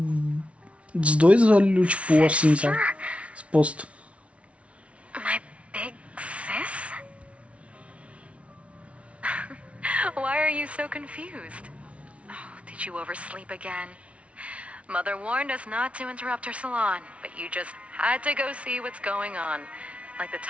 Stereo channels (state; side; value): late; left; 0.063 ms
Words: dois olhos, tipo, assim, sabe? Exposto. My big sis? Why are you so confused? Oh, did you oversleep again? Mother warned us not to interrupt her salon, but you just had to go see what's going on. Like the